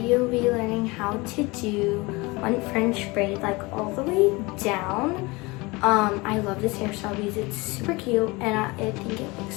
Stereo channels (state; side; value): quieter; right; 24.3 dB